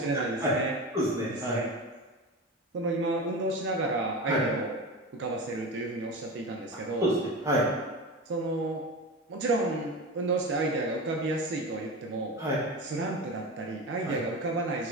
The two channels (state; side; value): normal; both; correlation 0.26